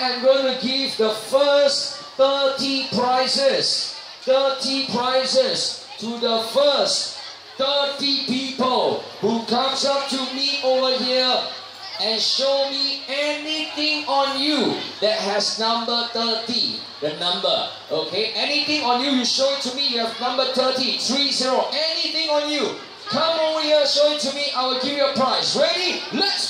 am going to give the first 30 prizes to the first 30 people who comes up to me over here and show me anything on you that has number 30, the number, okay? Anything on you, you show it to me, you have number 30, anything on you. Come over here, show it to me, I will give you a prize. Ready? Let's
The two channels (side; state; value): both; identical; correlation 1.00